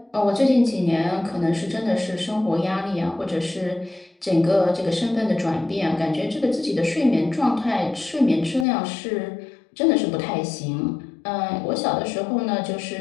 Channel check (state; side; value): drops out; right; at 8.7 s